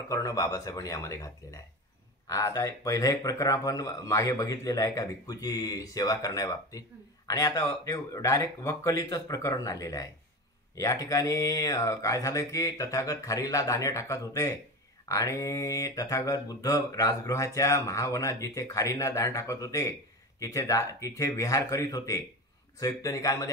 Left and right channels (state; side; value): normal; both; correlation 0.26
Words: बाबासाहेबांनी यामध्ये घातलेलं आहे. आता पहिलं एक प्रकरण आपण मागे बघितलेलं आहे का, भिक्खूची सेवा करण्याबाबतीत, आणि आता ते डायरेक्ट वक्कलीचंच प्रकरण आलेलं आहे. या ठिकाणी काय झालं की तथागत खारीला दाणे टाकत होते आणि तथागत बुद्ध राजगृहाच्या महावनात जिथे खारींना दाणे टाकत होते तिथे विहार करीत होते. संयुक्त निकायमध्ये